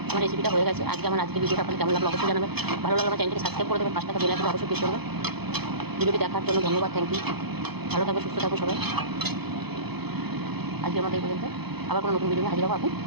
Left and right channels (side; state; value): left; late; 0.98 ms